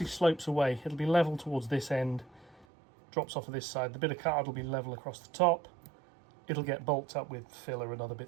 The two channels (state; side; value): drops out; left; at 2.7 s